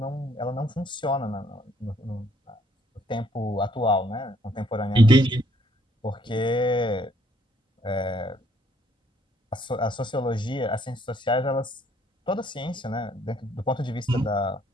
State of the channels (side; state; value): both; normal; correlation 0.67